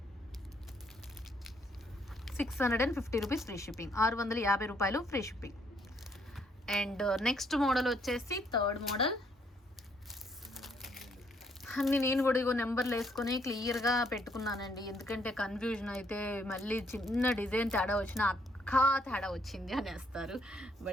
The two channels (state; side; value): normal; both; correlation 0.70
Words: 650 రూపీస్ ఫ్రీ షిప్పింగ్. 650 రూపాయలు free shipping. And next model వచ్చేసి థర్డ్ మోడల్. అన్ని నేను కూడా ఇగో నెంబర్లు వేసుకొని క్లియర్గా పెట్టుకున్నానండి. ఎందుకంటే కన్ఫ్యూజన్ అయితే మళ్ళీ చిన్న డిజైన్ తేడా వచ్చినా తేడా వచ్చింది అనేస్తారు.